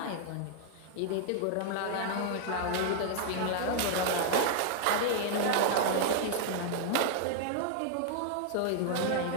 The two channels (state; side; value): different; both; correlation -0.01